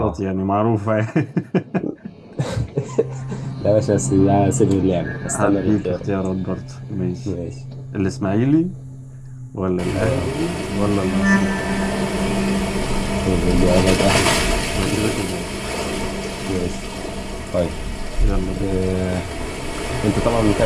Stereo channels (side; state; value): both; identical; correlation 1.00